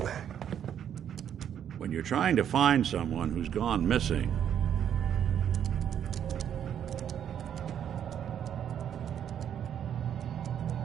When you're trying to find someone who's gone missing,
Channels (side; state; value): left; quieter; 9.3 dB